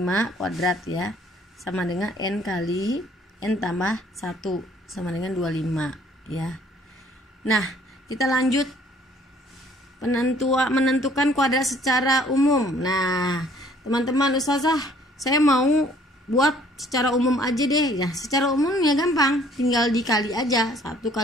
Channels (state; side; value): normal; both; correlation 0.58